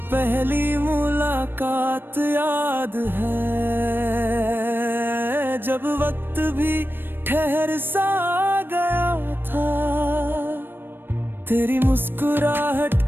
पहली मुलाकात याद है, जब वक्त भी ठहर सा गया था। तेरी मुस्कुराहट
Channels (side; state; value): left; late; 0.097 ms